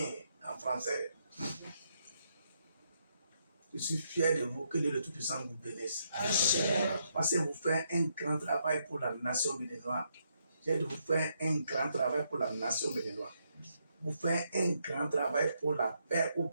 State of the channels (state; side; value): inverted; both; correlation -0.77